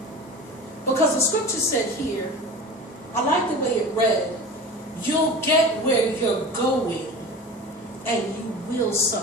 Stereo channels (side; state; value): both; normal; correlation 0.34